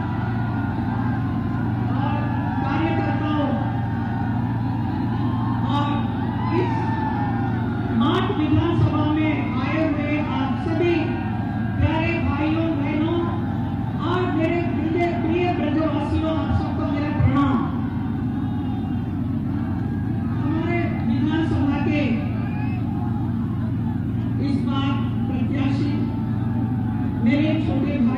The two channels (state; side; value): identical; both; correlation 1.00